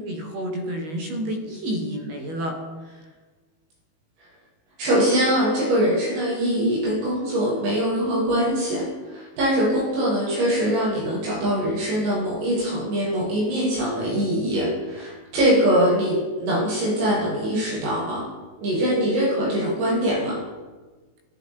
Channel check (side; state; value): left; late; 19 ms